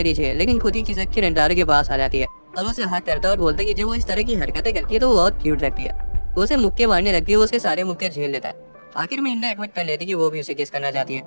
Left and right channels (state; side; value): inverted; both; correlation -1.00